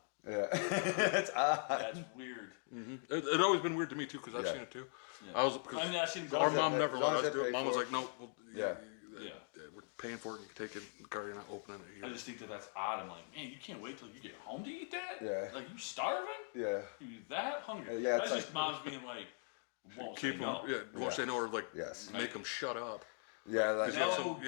Yeah. That's odd. That's weird. It always been weird to me too because I've Yeah. seen it too. Yeah. I was. I mean, I've seen them Our go. mom they- never as long let as us they do it. pay Mom for was it. like, no. Yeah. Yeah. We're paying for it. You can take it in the car. You're not opening it. I just think that's odd. I'm like, man, you can't wait till you get home to eat that? Yeah. Like, you starving? Yeah. You that hungry? Yeah, That's it's just moms being like, won't say Keep no. them- Yeah. Yeah. Won't say no or like Yes. make them shut up. Yeah. That's, No,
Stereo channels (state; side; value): silent; right; 51 dB below the other